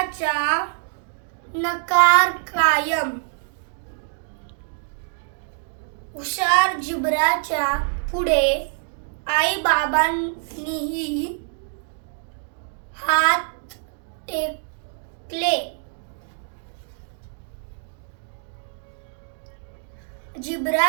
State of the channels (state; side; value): silent; left; 62 dB below the other